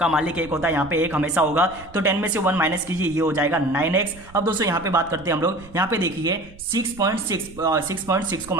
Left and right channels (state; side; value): noise; right; rumble, 20 dB below the sound